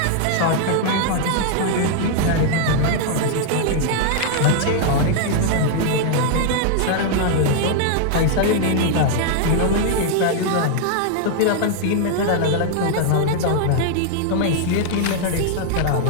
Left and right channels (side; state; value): both; different; correlation 0.00